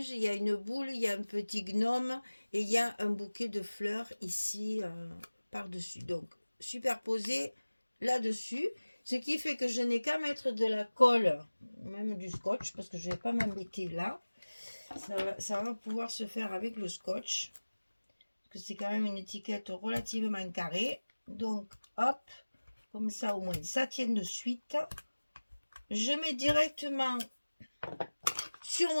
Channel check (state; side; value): inverted; both; correlation -1.00